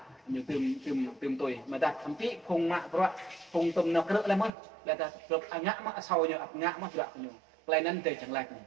như tìm tuổi mà ta thậm chí không mạ các bạn không tâm nó cỡ lắm mất là ta được ngã mạ sau như ngã mất đoạn nhiều lại nên để chẳng lạch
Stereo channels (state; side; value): drops out; left; at 4.5 s